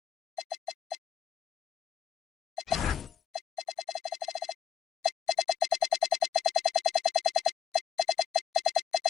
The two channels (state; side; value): quieter; right; 7.8 dB